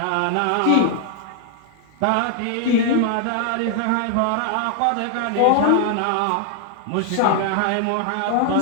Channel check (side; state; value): both; different; correlation 0.00